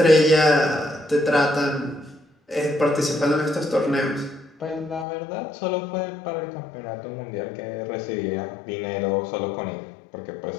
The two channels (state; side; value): drops out; right; at 5.1 s